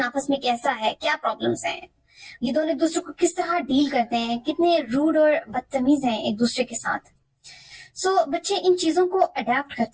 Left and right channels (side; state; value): both; identical; correlation 1.00